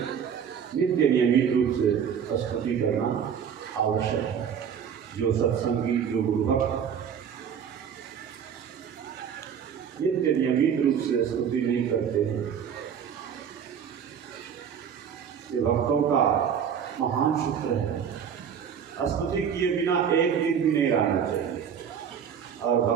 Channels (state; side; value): quieter; left; 7.8 dB